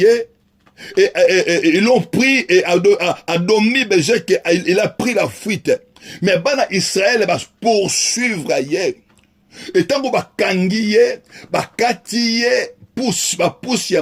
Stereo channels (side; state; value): both; identical; correlation 1.00